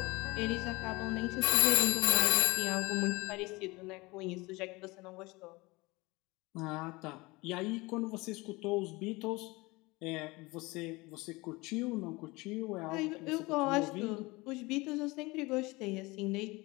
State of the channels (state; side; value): quieter; right; 23.2 dB